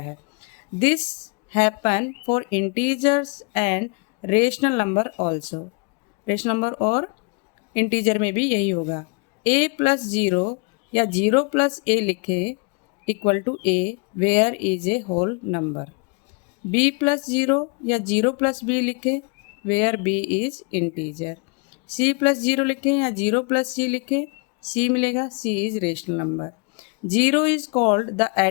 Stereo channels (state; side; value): quieter; right; 32.7 dB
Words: This happen for integers and rational number also. Rational number और इंटीजर में भी यही होगा। ए प्लस जीरो या जीरो प्लस ए लिखे equal to A where is A whole number. B plus zero या जीरो प्लस बी लिखे where B is integer. C plus zero लिखें या जीरो प्लस सी लिखें, सी मिलेगा, C is rational number. Zero is called the